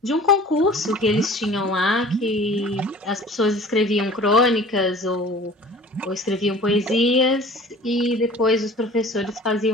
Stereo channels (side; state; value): both; normal; correlation 0.45